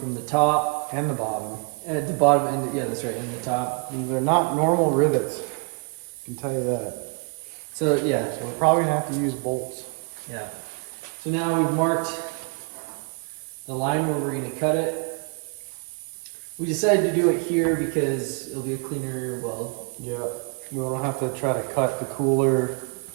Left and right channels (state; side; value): quieter; left; 35.2 dB